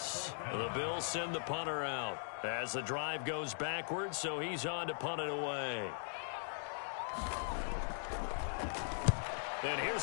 The Bills send the punter out as the drive goes backwards, so he's on to punt it away. And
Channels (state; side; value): silent; right; digital silence